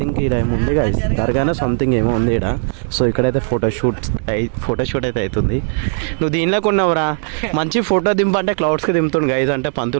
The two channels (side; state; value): left; silent; digital silence